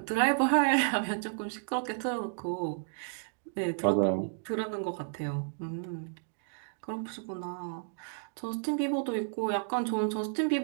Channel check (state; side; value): silent; left; digital silence